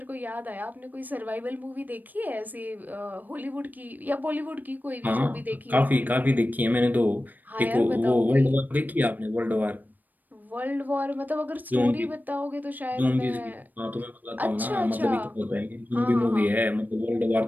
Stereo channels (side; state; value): left; late; 0.086 ms